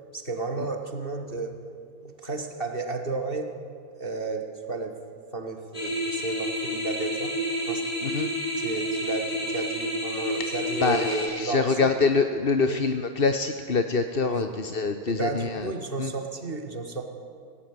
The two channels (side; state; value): right; late; 2.7 ms